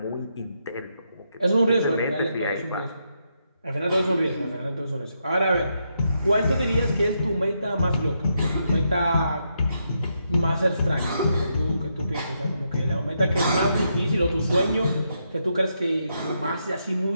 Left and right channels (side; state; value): both; inverted; correlation -0.81